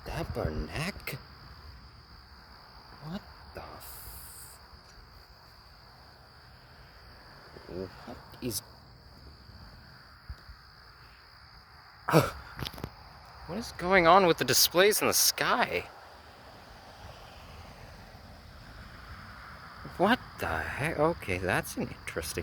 Tabernacle? What the What is... What is going on with the displays in the sky? What the heck? Okay, that's an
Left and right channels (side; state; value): both; identical; correlation 1.00